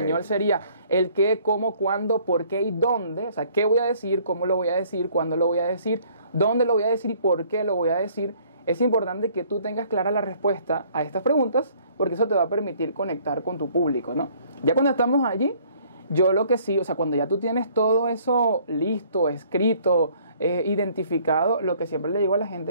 sería el qué, cómo, cuándo, por qué y dónde. O sea, qué voy a decir, cómo lo voy a decir, cuándo lo voy a decir, dónde lo voy a decir y por qué lo voy a decir. Es importante que tú tengas clara la respuesta a estas preguntas, porque eso te va a permitir conectar con tu público, ¿no? Ya cuando estamos allí, yo lo que sí, o sea, cuando ya tú tienes todo eso listo, escrito, identificado, lo que siempre le digo a la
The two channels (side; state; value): both; inverted; correlation -0.59